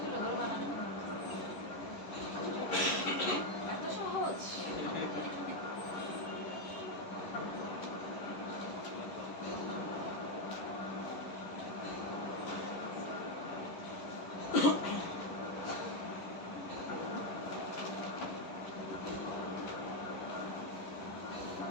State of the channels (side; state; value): right; late; 11 ms